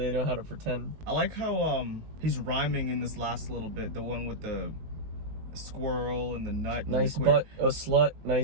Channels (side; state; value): left; late; 19 ms